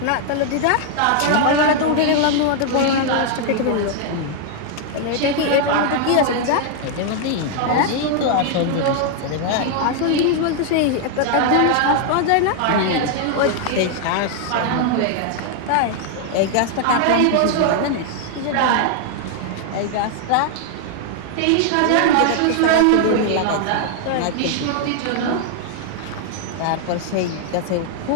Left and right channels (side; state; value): both; different; correlation 0.00